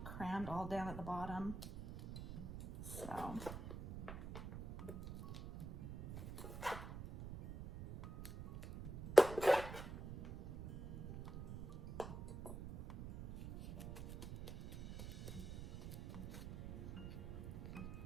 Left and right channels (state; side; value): noise; right; rumble, 9 dB below the sound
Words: crammed all down at the bottom. So.